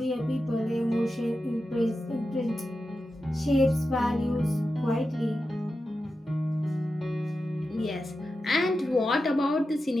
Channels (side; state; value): both; normal; correlation 0.91